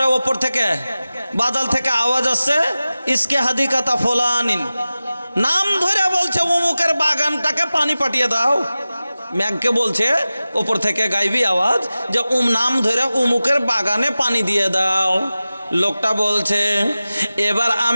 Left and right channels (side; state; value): both; inverted; correlation -0.96